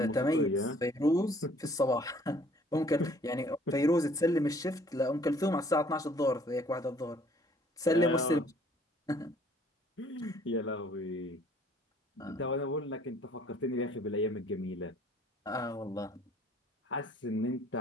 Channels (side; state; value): both; normal; correlation 0.58